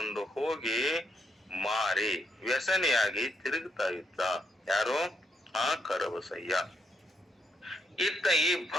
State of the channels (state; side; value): normal; both; correlation 0.77